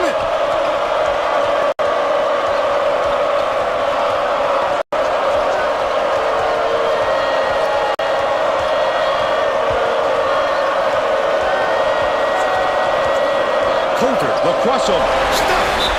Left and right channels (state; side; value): identical; both; correlation 1.00